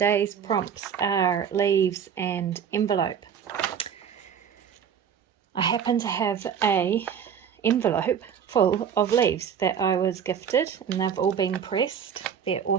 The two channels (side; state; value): left; quieter; 7.9 dB